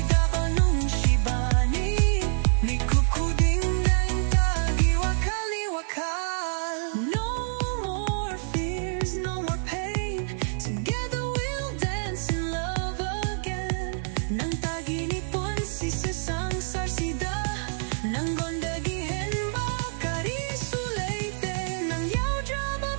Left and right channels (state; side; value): silent; left; digital silence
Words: dabanong shibani. Ni kukuding ng tagiwakaliwakal. No more fears, no more pain. Together we'll dance in love again. Nang